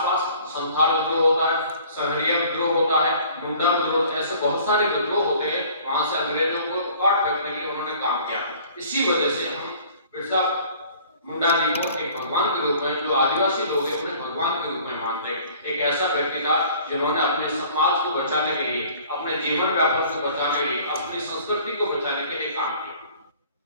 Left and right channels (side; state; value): both; inverted; correlation -0.51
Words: संथाल विद्रोह होता है, सहरिया विद्रोह होता है, मुंडा विद्रोह, ऐसे बहुत सारे विद्रोह होते हैं। वहां से अंग्रेजों को काट फेंकने के लिए उन्होंने काम किया। इसी वजह से हम बिरसा मुंडा जी को एक भगवान के रूप में, जो आदिवासी लोग हैं उन्हें भगवान के रूप में मानते हैं। एक ऐसा व्यक्ति था जिन्होंने अपने समाज को बचाने के लिए, अपने जीवन व्यापन को बचाने के लिए, अपनी संस्कृति को बचाने के लिए काम किया।